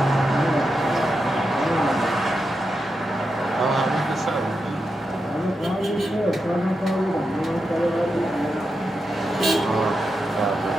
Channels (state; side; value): normal; both; correlation 0.87